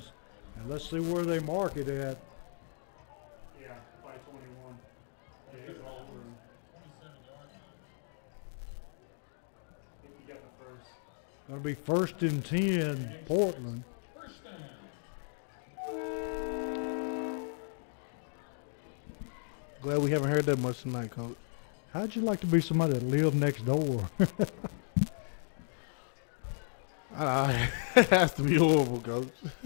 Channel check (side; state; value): right; silent; digital silence